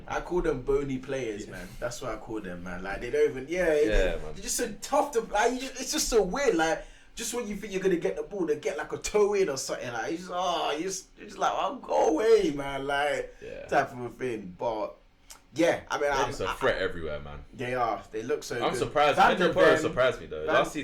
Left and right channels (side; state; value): both; identical; correlation 1.00